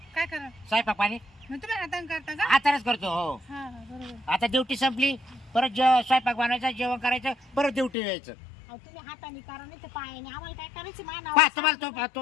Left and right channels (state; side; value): drops out; right; at 7.9 s